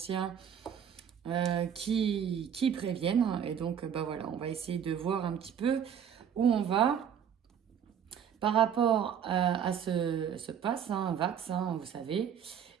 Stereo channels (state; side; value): quieter; left; 8.4 dB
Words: qui préviennent. Et donc, voilà, on va essayer de voir un petit peu où on va par rapport à ce pass, Vax, vous savez.